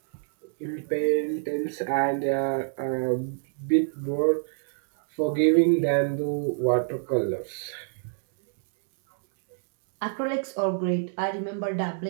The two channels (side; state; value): left; silent; digital silence